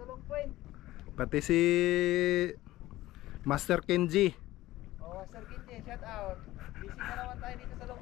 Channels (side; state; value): right; quieter; 16.5 dB